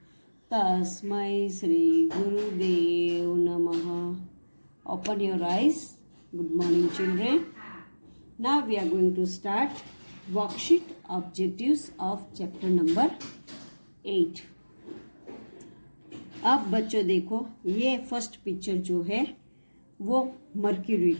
तस्मै श्री गुरुदेव नमः. Open your eyes. Good morning, children. Now we are going to start worksheet objectives of chapter number 8. अब बच्चों देखो, ये फर्स्ट पिक्चर जो है वो मर्क्यूरी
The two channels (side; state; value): both; inverted; correlation -1.00